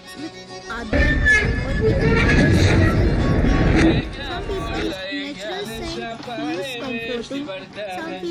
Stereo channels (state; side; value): identical; both; correlation 1.00